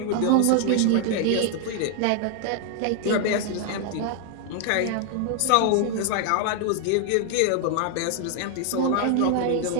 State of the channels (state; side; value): different; both; correlation 0.00